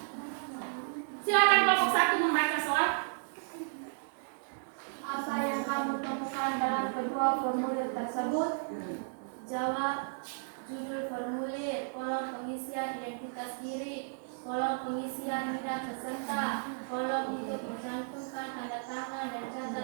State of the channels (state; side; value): silent; left; 55 dB below the other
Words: Silakan kelompok 1 membaca soal. Apa yang kamu temukan dalam kedua formulir tersebut? Jawab. Judul formulir, kolom pengisian identitas diri, kolom pengisian bidang peserta, kolom untuk mencantumkan tanda tangan dan